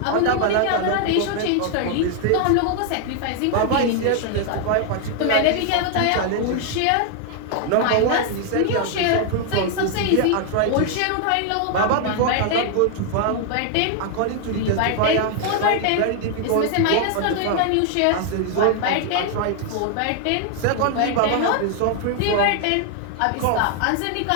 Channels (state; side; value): different; both; correlation 0.00